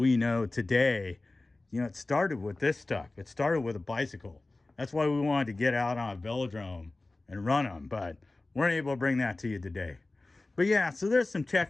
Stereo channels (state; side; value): quieter; right; 3.1 dB